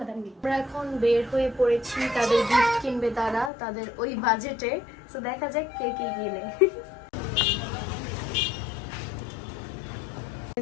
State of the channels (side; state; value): right; drops out; at 3.5 s